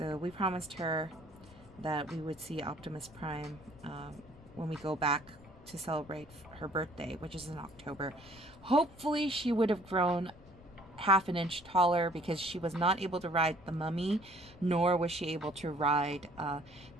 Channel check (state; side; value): noise; left; rumble, 22 dB below the sound